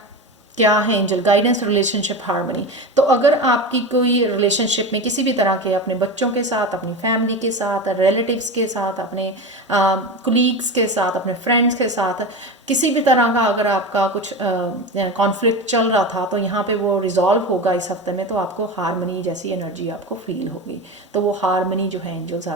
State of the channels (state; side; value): normal; both; correlation 0.25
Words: क्या है एंजल गाइडेंस, रिलेशनशिप हार्मनी। तो अगर आपकी कोई रिलेशनशिप में किसी भी तरह के, अपने बच्चों के साथ, अपनी फैमिली के साथ, रिलेटिव्स के साथ, अपने कुलीग्स के साथ, अपने फ्रेंड्स के साथ किसी भी तरह का अगर आपका कुछ कॉन्फ्लिक्ट चल रहा था, तो यहाँ पे वो रिजॉल्व होगा इस हफ्ते में। तो आपको हार्मनी जैसी एनर्जी आपको फील होगी। तो वो हार्मनी जो है एंजल्स